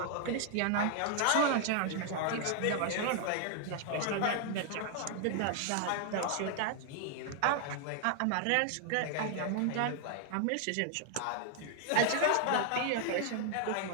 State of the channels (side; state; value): both; different; correlation 0.00